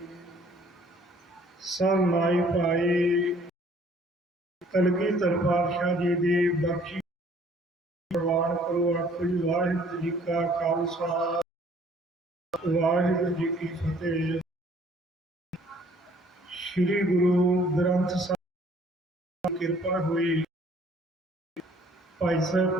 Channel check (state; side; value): normal; both; correlation 0.58